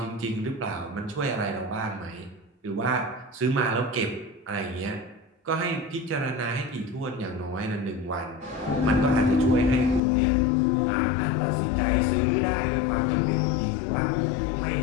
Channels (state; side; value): drops out; right; at 10.0 s